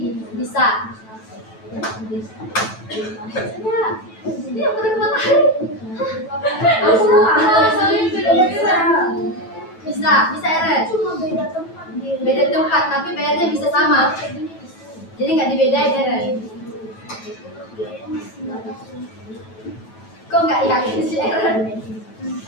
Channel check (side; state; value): right; late; 9.2 ms